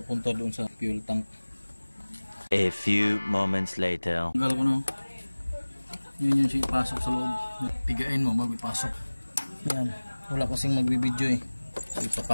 doon sa fuel tank. A few moments later. Tanggal ko na. Yun yung siya ipasok sa loob. Pigain mo bago ipasok. Yan. Wala kasing magbibideo eh. So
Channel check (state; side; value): inverted; both; correlation -1.00